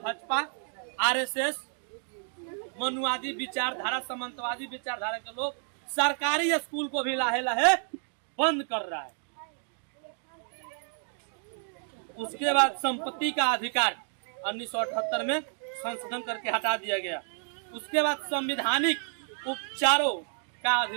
आरएसएस, मनुवादी विचारधारा, सामंतवादी विचारधारा के लोग सरकारी स्कूल को भी लाहे लाहे बंद कर रहा है। उसके बाद संपत्ति का अधिकार 1978 में संशोधन करके हटा दिया गया। उसके बाद संवैधानिक उपचारों का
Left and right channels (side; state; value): left; silent; 57 dB below the other